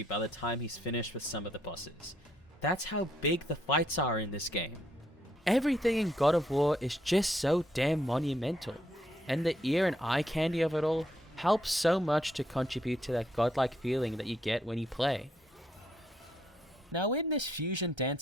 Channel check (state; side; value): normal; both; correlation 0.73